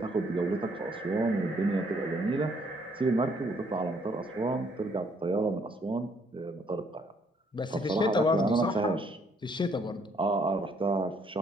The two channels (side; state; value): both; normal; correlation 0.67